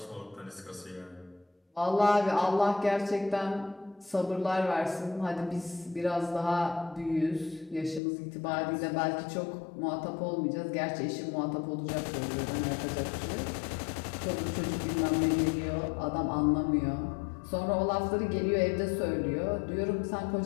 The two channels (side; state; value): right; drops out; at 8.0 s